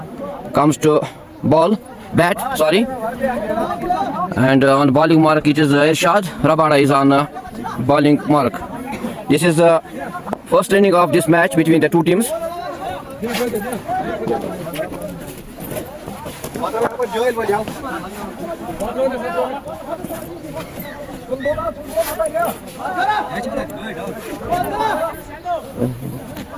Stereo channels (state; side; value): identical; both; correlation 1.00